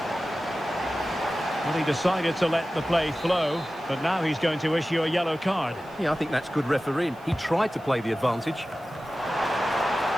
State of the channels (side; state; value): right; noise; hiss, 29 dB below the sound